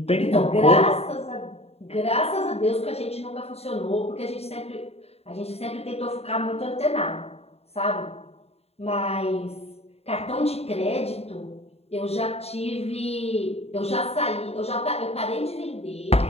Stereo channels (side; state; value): right; late; 0.30 ms